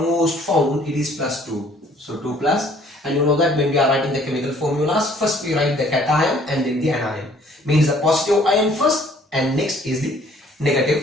found, it is plus 2. So 2 plus, and you know that when we are writing the chemical formulas, first we write the cation and then the anion. Means the positive ion first and next is the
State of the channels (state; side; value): normal; both; correlation 0.58